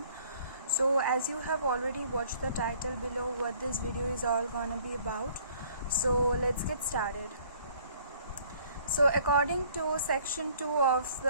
So as you have already watched the title below what this video is all gonna be about, so let's get started. So according to section 2 of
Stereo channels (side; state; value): both; inverted; correlation -0.57